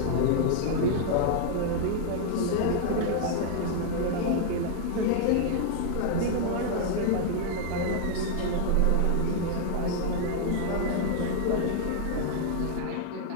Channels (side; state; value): both; different; correlation 0.00